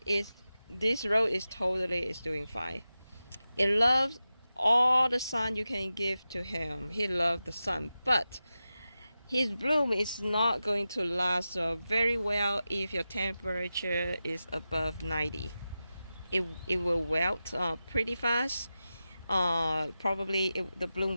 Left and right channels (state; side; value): inverted; both; correlation -0.93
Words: this rose is totally doing fine. It loves all the sun you can give to him. He loves the sun, but his bloom is not going to last very well if your temperature is above 90. It will wilt pretty fast. Probably the bloom